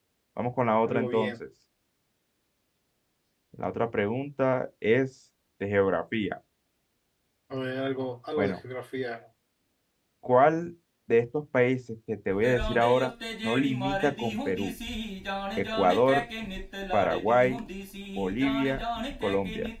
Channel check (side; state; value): both; identical; correlation 1.00